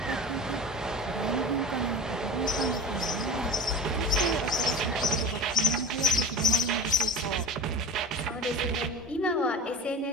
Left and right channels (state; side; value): normal; both; correlation 0.34